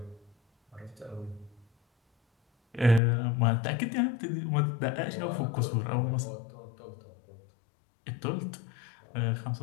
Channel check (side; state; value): right; drops out; at 3.0 s